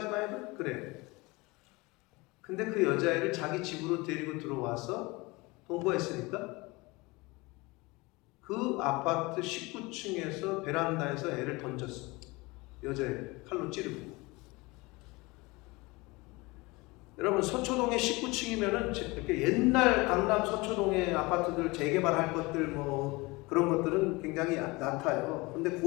해도 그래. 근데 그 여자애를 자기 집으로 데리고 들어와서 동거했으니까 그 아파트 19층에서 베란다에서 애를 던졌어. 여자애 칼로 찌르고. 여러분, 서초동의 19층이면은 이렇게 옛날 강남 서초동의 아파트들 재개발할 것들 뭐 그런 것들은 굉장히 낮아요. 근데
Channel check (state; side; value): quieter; right; 23.8 dB